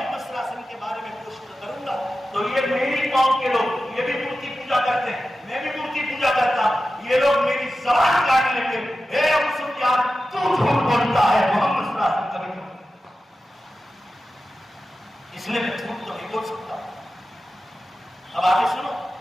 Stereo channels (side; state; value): both; normal; correlation 0.93